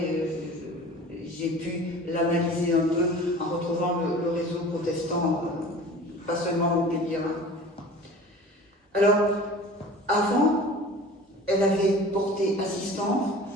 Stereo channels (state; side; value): normal; both; correlation 0.41